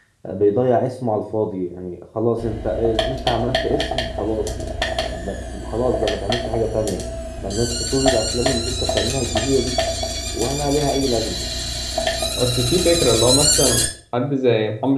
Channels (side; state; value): both; identical; correlation 1.00